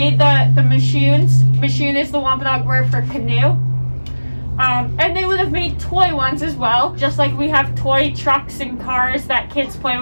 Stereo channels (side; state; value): both; inverted; correlation -1.00